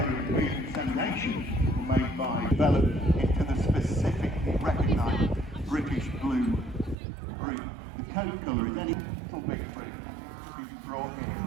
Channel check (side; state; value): left; drops out; at 7.0 s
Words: and beef inseminations were made by developed into the specifically recognised British Blue breed. The coat colour is any little bit brought in